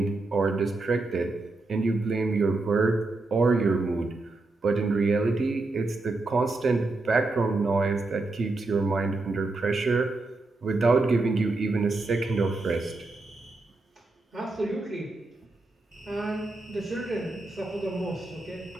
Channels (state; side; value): quieter; left; 3.2 dB